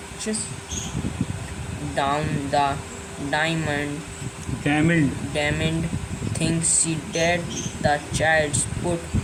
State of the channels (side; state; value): both; identical; correlation 1.00